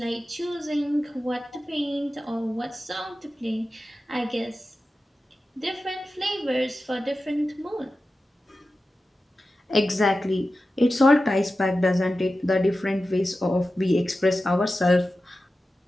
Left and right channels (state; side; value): normal; both; correlation 0.93